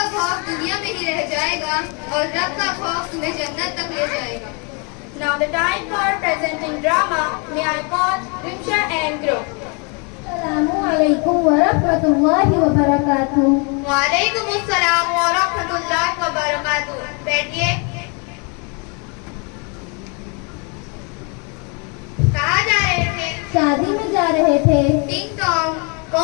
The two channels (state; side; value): quieter; right; 34.0 dB